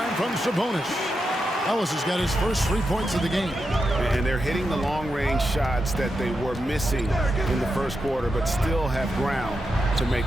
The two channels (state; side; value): normal; both; correlation 0.87